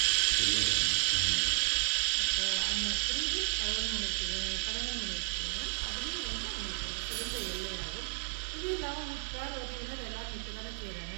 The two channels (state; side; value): silent; left; 56 dB below the other